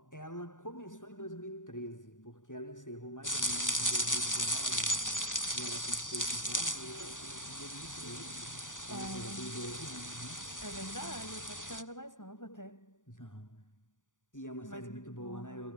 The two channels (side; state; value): right; late; 0.87 ms